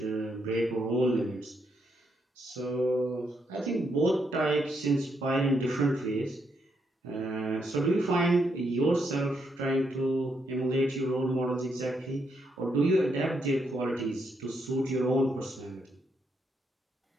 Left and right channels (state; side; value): normal; both; correlation 0.77